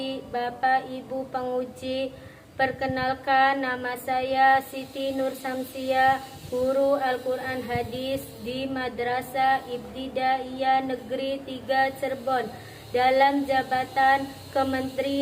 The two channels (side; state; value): both; identical; correlation 1.00